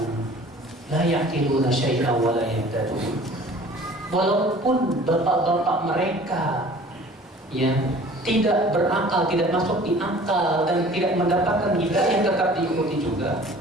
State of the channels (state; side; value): normal; both; correlation 0.48